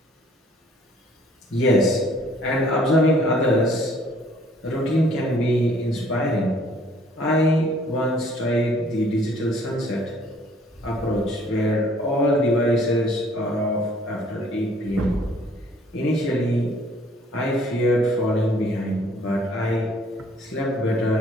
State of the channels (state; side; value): normal; both; correlation 0.59